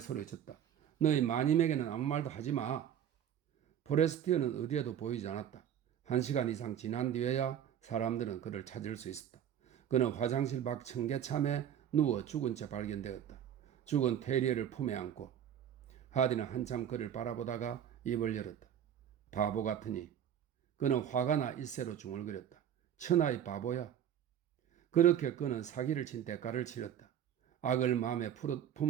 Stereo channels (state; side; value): quieter; left; 9.7 dB